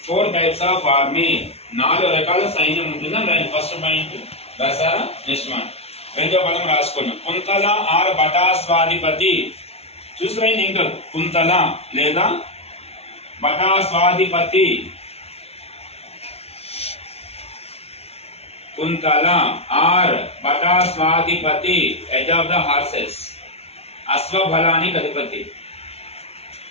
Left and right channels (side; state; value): right; late; 0.30 ms